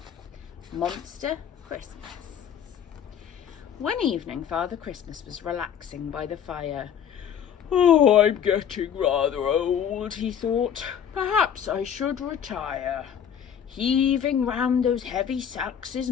Monster Christmas. One evening, Father Christmas was relaxing by the fire. "Oh, I'm getting rather old," he thought. "Perhaps I should retire. Heaving round those heavy sacks is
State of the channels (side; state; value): right; quieter; 8.5 dB